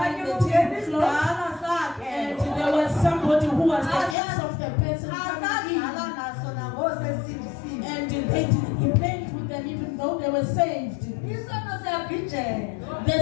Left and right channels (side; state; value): right; drops out; at 4.2 s